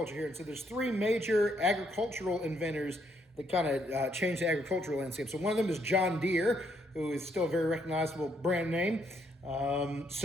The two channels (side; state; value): both; normal; correlation 0.72